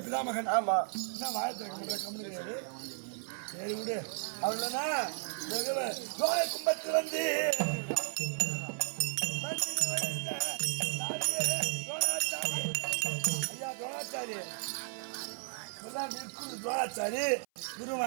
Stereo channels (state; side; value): silent; left; 55 dB below the other